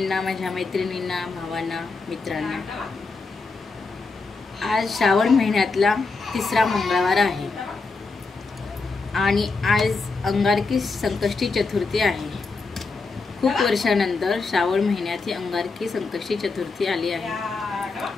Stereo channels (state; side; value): quieter; right; 4.1 dB